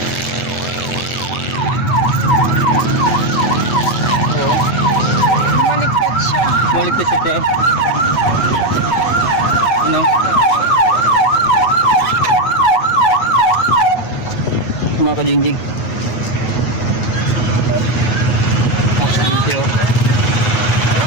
Maligtas siya, te. Ano? Mga kajingjing. Aksidente oh.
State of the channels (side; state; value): right; late; 8.1 ms